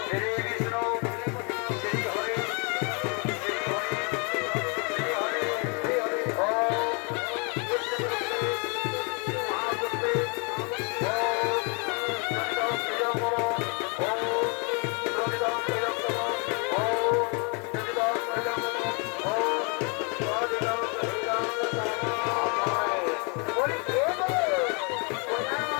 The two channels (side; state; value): right; quieter; 34.4 dB